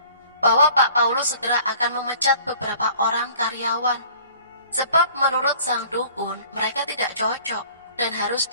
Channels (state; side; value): inverted; both; correlation -0.51